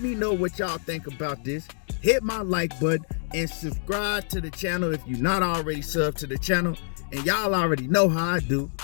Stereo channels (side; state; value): right; silent; digital silence